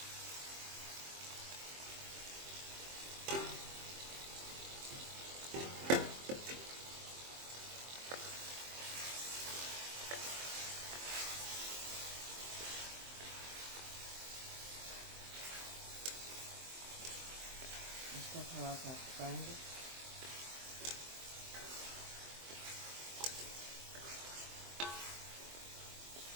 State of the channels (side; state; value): left; late; 23 ms